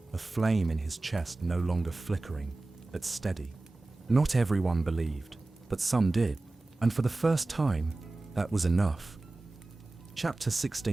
a flame in his chest no longer flickering, but steady. Not everyone believed, but some did, and for the first time, that was enough. Chapter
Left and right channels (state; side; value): quieter; left; 3.1 dB